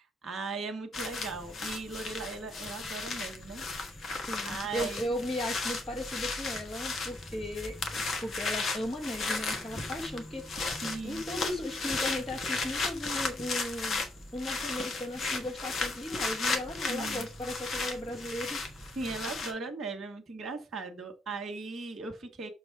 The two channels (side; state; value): both; normal; correlation 0.72